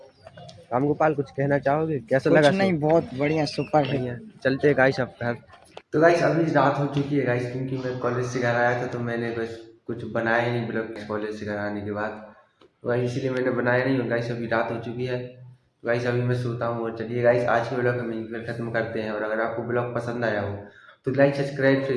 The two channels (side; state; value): both; identical; correlation 1.00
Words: रामगोपाल कुछ कहना चाहोगे? कैसा लगा? नहीं, बहुत बढ़िया, सुपर है। बढ़िया। चलते हैं गाइस अब घर। तो गाइस अभी रात हो चुकी है गाइस, क्योंकि मैं कॉलेज से घर आया था तो मैंने बस कुछ बनाया ही नहीं ब्लॉग कॉलेज से घर आने के बाद। तो गाइस इसलिए मैंने बनाया नहीं। और गाइस अभी रात हो चुकी है, तो गाइस अभी मैं सोता हूँ। और चलिए गाइस आज के ब्लॉग हम यहीं पर खत्म करते हैं। और अगर आपको ब्लॉग पसंद आया हो तो लाइक सब्सक्राइब